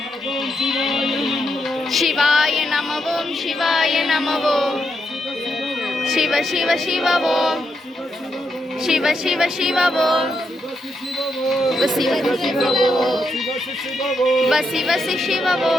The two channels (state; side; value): normal; both; correlation 0.81